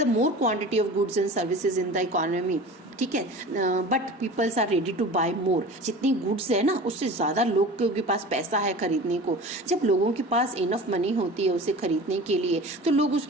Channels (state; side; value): normal; both; correlation 0.37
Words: the more quantity of goods and services in the economy, ठीक है, but peoples are ready to buy more. जितनी गुड्स है ना, उससे ज्यादा लोगों के पास पैसा है खरीदने को। जब लोगों के पास इनफ मनी होती है उसे खरीदने के लिए, तो लोग